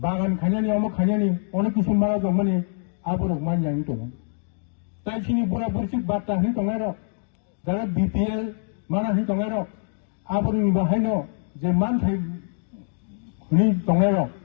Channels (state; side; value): silent; right; digital silence